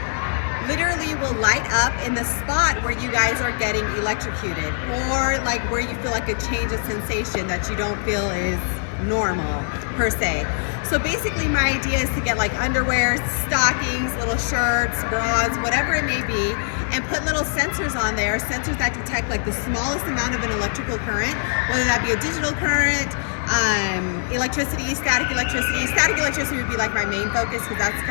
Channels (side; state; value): right; silent; 63 dB below the other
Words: literally will light up in the spot where you guys are getting electrocuted, or like where you feel like a change of sensation that you don't feel is normal per se. So basically my idea is to get like underwear, stockings, little shirts, bras, whatever it may be, and put little sensors on there, sensors that detect like the smallest amount of an electrical current, whether that be a digital current, electricity, static electricity. Static electricity would be like my main focus because that's